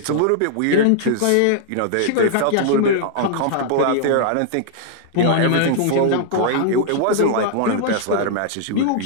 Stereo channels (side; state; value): both; different; correlation -0.01